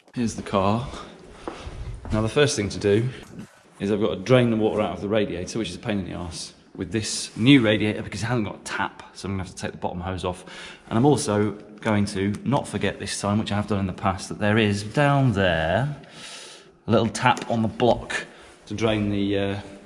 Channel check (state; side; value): identical; both; correlation 1.00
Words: Here's the car. Now the first thing to do is I've got to drain the water out of the radiator, which is a pain in the arse, with this new radiator because it hasn't got a tap, so I'm going to have to take the bottom hose off. And I'm also going to not forget this time, which I have done in the past, that there is down there a little tap on the block to drain the